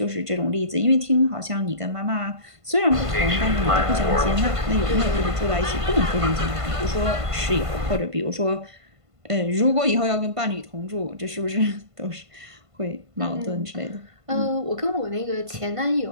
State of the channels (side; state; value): left; late; 1.5 ms